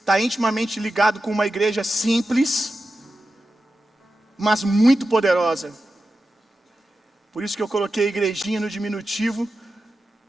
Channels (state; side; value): normal; both; correlation 0.92